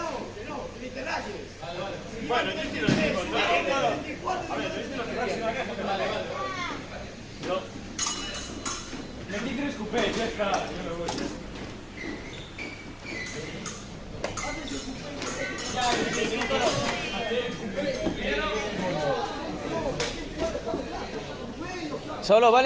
ni te rayes. Bueno, yo estoy los mismos, ¿no? A ver, yo estoy los mismos. No. Metí 3 cupés, ya está. Yo me voy. Solo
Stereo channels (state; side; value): identical; both; correlation 1.00